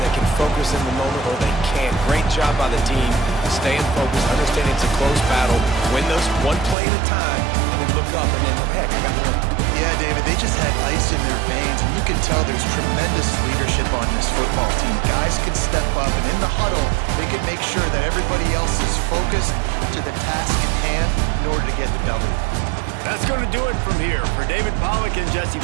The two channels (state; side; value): drops out; left; at 6.8 s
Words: can focus in the moment or they can't. Great job by the team, staying focused, understanding it's a close battle, win those one play at a time, and then look up and then, heck, I got the win. Yeah, David, they just had ice in their veins, and you can tell there's tremendous leadership on this football team. Guys can step up, and in the huddle, they can make sure that everybody else is focused to the task at hand in order to get the W. That's going to do it from here. For David Pollack and Jesse